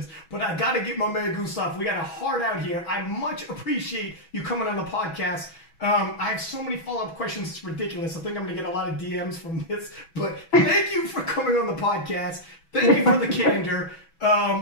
But I got to get my man Gustav. We got a heart out here. I much appreciate you coming on the podcast. I have so many follow-up questions. It's ridiculous. I think I'm going to get a lot of DMs from this. But thank you for coming on the podcast. Thank you for the candor.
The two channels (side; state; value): right; late; 6.1 ms